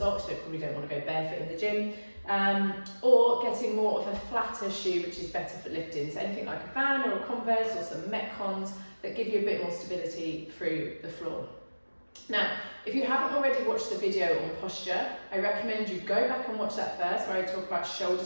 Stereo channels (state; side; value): inverted; both; correlation -1.00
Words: You probably don't want to go barefoot in the gym, or getting more of a flatter shoe, which is better for lifting. So anything like a Van or a Converse or some Metcons that give you a bit more stability through the floor. Now, if you haven't already watched the video on posture, I recommend you go back and watch that first, where I talk about